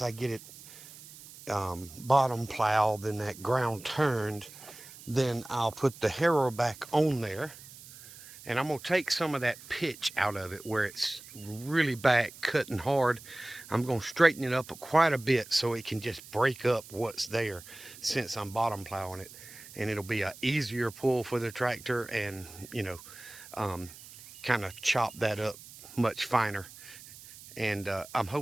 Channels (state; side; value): noise; right; hiss, 18 dB below the sound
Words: I get it bottom plowed and that ground turned, then I'll put the harrow back on there, and I'm gonna take some of that pitch out of it where it's really back cutting hard. I'm gonna straighten it up quite a bit so it can just break up what's there, since I'm bottom plowing it, and it'll be a easier pull for the tractor, and kind of chop that up much finer. And I'm